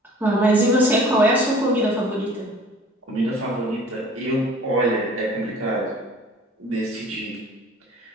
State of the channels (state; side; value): normal; both; correlation 0.48